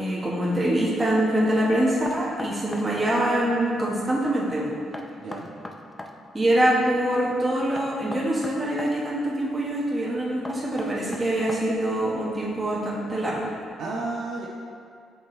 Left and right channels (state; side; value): normal; both; correlation 0.82